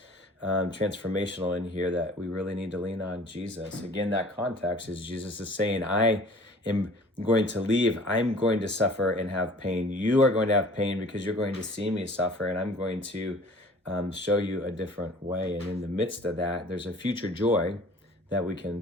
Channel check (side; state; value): both; normal; correlation 0.48